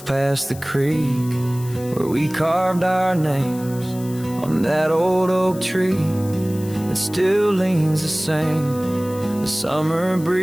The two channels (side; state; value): left; noise; hiss, 18 dB below the sound